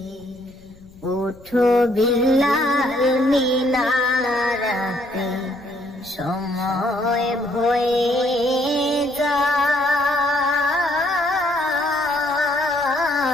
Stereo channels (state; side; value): noise; left; rumble, 26 dB below the sound